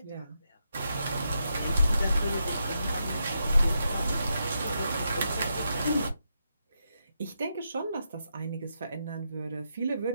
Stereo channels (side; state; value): both; inverted; correlation -0.83